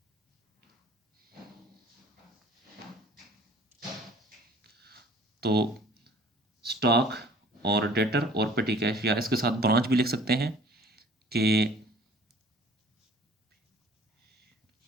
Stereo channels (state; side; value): normal; both; correlation 0.52